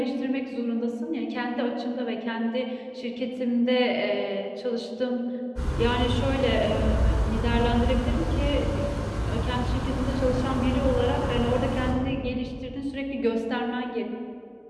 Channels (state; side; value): identical; both; correlation 1.00